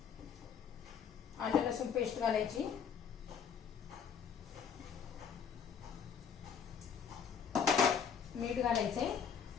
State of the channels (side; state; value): right; quieter; 7.2 dB